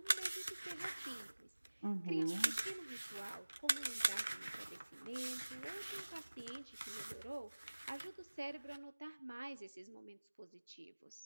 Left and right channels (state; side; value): inverted; both; correlation -1.00